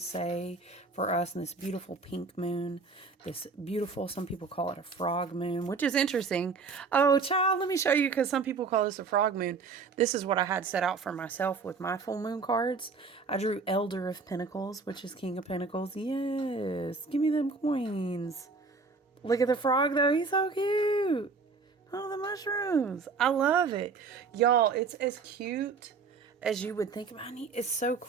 for us in this beautiful pink moon? This beautiful, some people call it a frog moon, which is interesting. Oh, child, let me show you, because some people call this a frog moon. This is what I had set out for myself with my full moon cards. I drew Elder of Pentacles, which is King of Pentacles. Yes, give me them coins. Look at the frog, though. He's so cute. Oh, the mushrooms. I love it. Y'all, it's as cute as you would think about it. It's so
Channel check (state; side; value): quieter; left; 4.6 dB